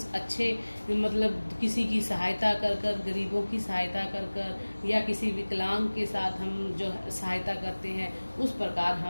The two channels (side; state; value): both; inverted; correlation -1.00